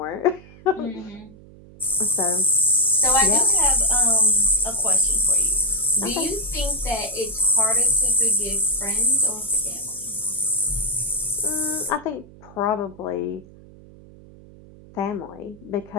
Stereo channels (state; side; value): noise; right; hum, 22 dB below the sound